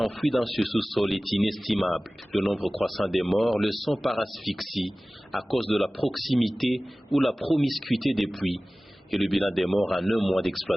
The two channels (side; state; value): both; normal; correlation 0.97